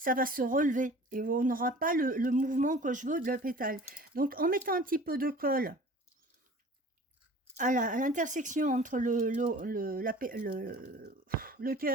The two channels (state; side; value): normal; both; correlation 0.44